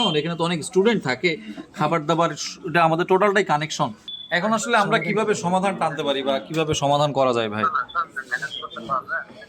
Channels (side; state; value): both; identical; correlation 1.00